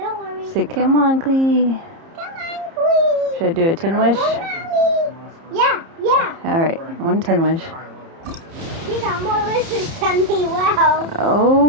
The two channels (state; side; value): late; left; 30 ms